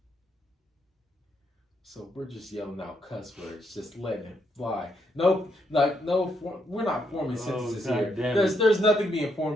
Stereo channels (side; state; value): both; normal; correlation 0.76